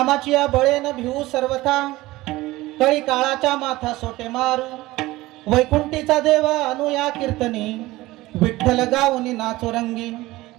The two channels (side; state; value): left; quieter; 18.6 dB